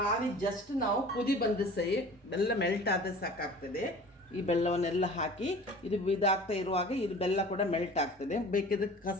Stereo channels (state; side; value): normal; both; correlation 0.43